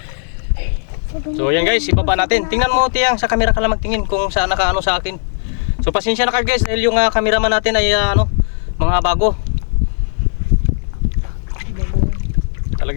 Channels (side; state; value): right; silent; digital silence